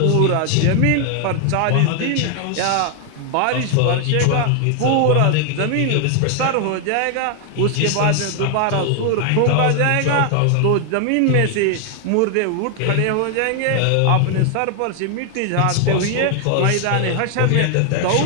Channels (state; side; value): different; both; correlation 0.00